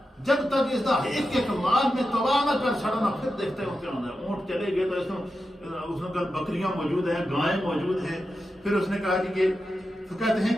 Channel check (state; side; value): normal; both; correlation 0.90